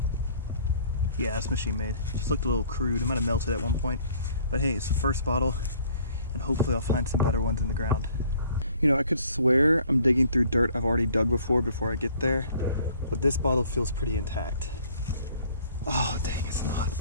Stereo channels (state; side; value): inverted; both; correlation -0.56